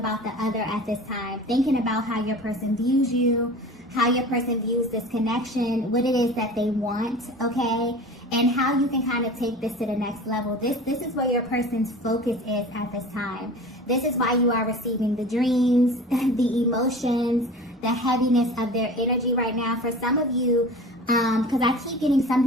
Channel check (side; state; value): both; normal; correlation 0.38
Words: the other at this time. Thinking about how your person views you, how your person views this connection, what it is that they want, okay? And how you can kind of take this to the next level. This is where your person's focus is at this time. This is why you are receiving the dreams, the emotions, the heaviness of their energy right now. For some of you, because I keep getting